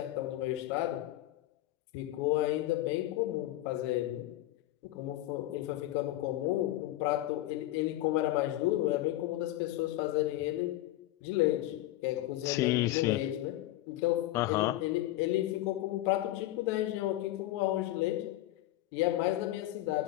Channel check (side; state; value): right; quieter; 15.6 dB